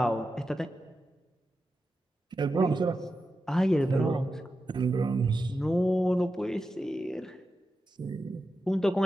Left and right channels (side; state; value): both; normal; correlation 0.90